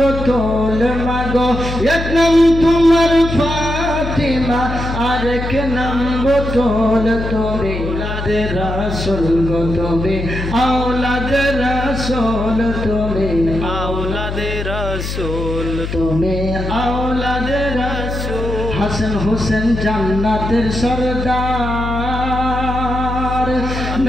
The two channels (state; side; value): noise; left; hum, 5 dB below the sound